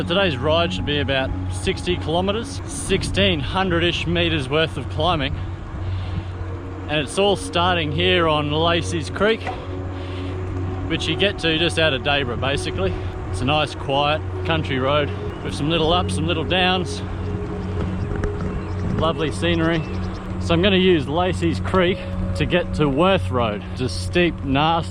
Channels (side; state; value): both; identical; correlation 1.00